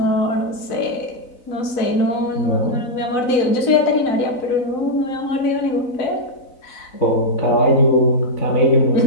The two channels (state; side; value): late; right; 4.0 ms